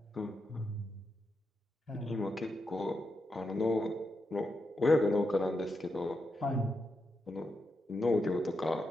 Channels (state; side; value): normal; both; correlation 0.85